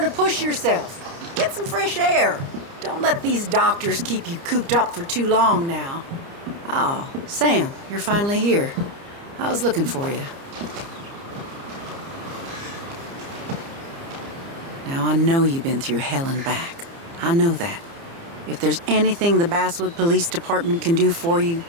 to push yourself. Get some fresh air. Don't let these doctors keep you cooped up for too long now. Oh, Sam, you're finally here. I was looking for you. Now, I know you've been through hell and back. I know that. If there's anything the Basswood Police Department can do for you,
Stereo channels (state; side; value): late; left; 30 ms